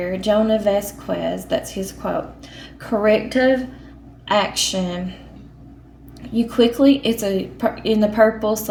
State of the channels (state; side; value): identical; both; correlation 1.00